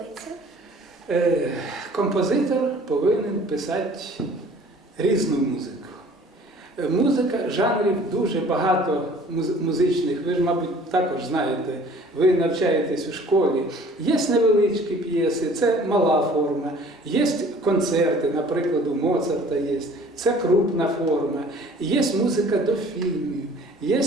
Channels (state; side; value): normal; both; correlation 0.51